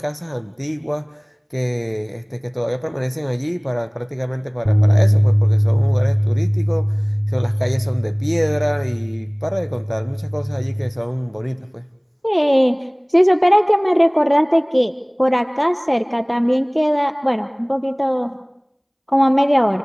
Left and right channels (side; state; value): both; identical; correlation 1.00